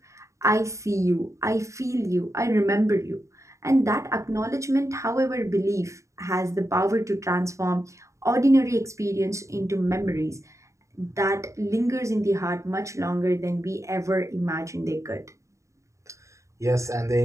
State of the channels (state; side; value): late; left; 0.15 ms